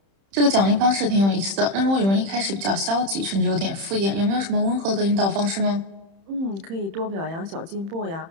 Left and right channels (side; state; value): left; late; 31 ms